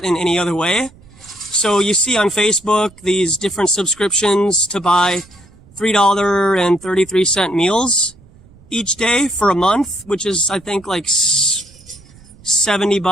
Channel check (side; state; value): right; noise; rumble, 25 dB below the sound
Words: in any other way. So you see on Facebook these different subscriptions to buy $3.33 meals each day for a month, which is, I think, like